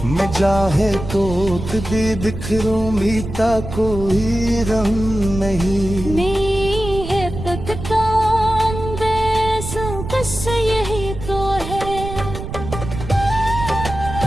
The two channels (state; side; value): noise; right; rumble, 8 dB below the sound